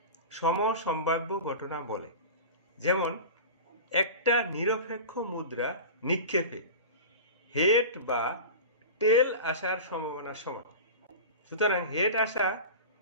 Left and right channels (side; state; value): both; inverted; correlation -0.31